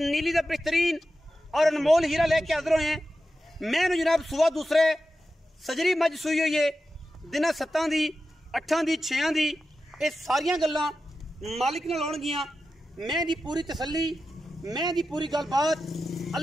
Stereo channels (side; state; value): both; normal; correlation 0.92